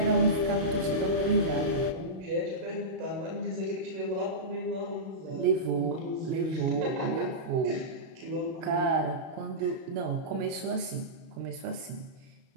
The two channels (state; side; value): late; left; 32 ms